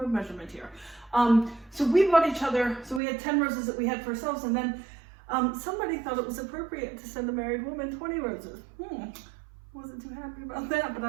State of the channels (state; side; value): drops out; left; at 3.0 s